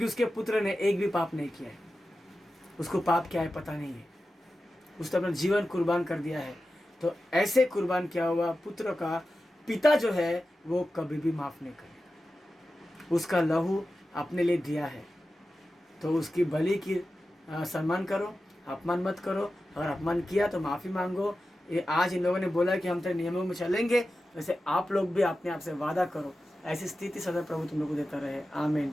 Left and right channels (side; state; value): both; normal; correlation 0.93